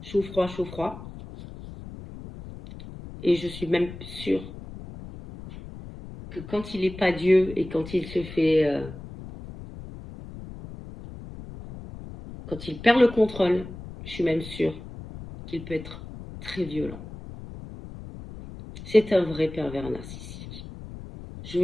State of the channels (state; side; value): noise; left; rumble, 13 dB below the sound